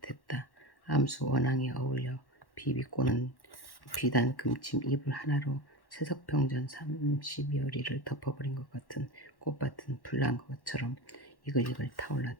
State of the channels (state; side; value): late; right; 1.1 ms